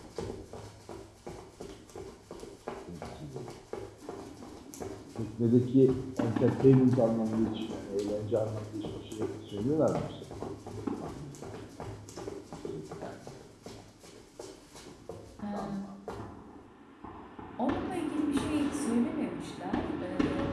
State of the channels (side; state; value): both; identical; correlation 1.00